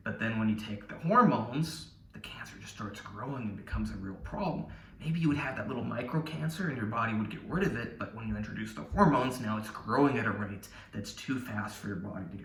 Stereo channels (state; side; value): identical; both; correlation 1.00